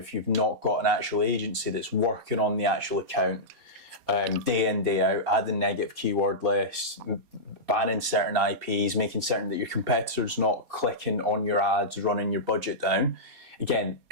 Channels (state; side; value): late; left; 4.2 ms